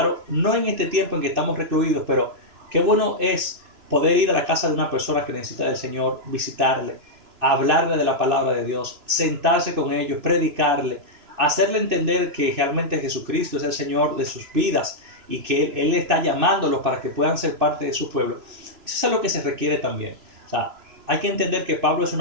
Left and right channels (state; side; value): late; left; 3.0 ms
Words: no en este tiempo en que estamos recluidos, pero qué bueno es poder ir a la casa de una persona que necesita del Señor, visitarle, hablarle de la palabra de Dios, sentarse con ellos, predicarle, hacerle entender que realmente Jesucristo es el Señor de sus vidas y que Él está llamándolos para que puedan ser parte de su pueblo. Eso es lo que se requiere también. O sea, hay que entender que Pablo es